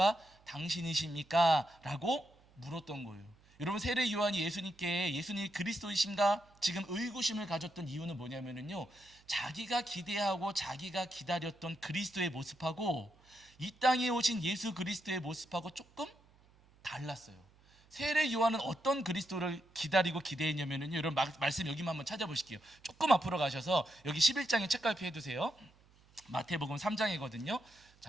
당신이십니까? 라고 물었던 거예요. 여러분, 세례 요한이 예수님께 예수님이 그리스도이신가? 지금 의구심을 가졌던 이유는 뭐냐면요, 자기가 기대하고 자기가 기다렸던 그리스도의 모습하고 이 땅에 오신 예수 그리스도의 모습하고 조금 달랐어요. 세례 요한은 어떤 그리스도를 기다리고 기대했냐면요, 여러분 말씀 여기만 한번 찾아보실게요. 조금 앞으로 가셔서 여기 11장에 책갈피 해두세요. 마태복음 3장이거든요.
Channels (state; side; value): noise; right; hum, 29 dB below the sound